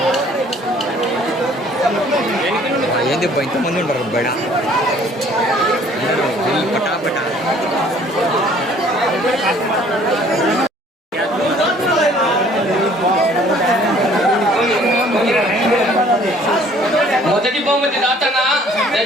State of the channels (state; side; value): normal; both; correlation 0.56